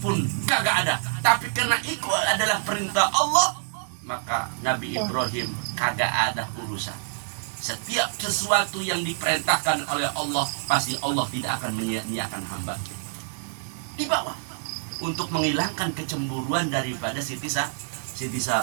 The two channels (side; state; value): left; silent; digital silence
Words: kagak ada. Tapi karena itu adalah perintah Allah, maka Nabi Ibrahim kagak ada urusan. Setiap sesuatu yang diperintahkan oleh Allah, pasti Allah tidak akan menyia-nyiakan hamba. Dibawa untuk menghilangkan kecemburuan daripada Siti